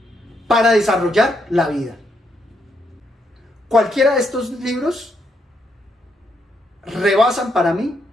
para desarrollar la vida. Cualquiera de estos libros rebasan para mí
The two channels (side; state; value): both; normal; correlation 0.77